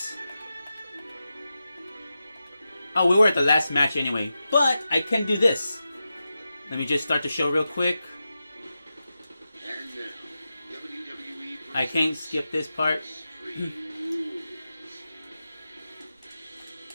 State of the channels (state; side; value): inverted; both; correlation -0.91